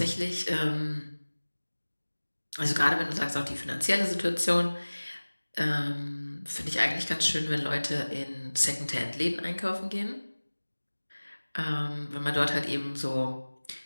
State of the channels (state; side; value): inverted; both; correlation -1.00